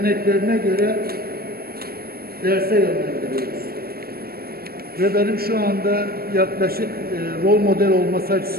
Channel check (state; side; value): late; left; 0.44 ms